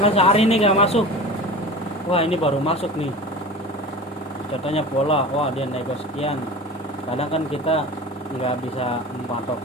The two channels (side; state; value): both; normal; correlation 0.34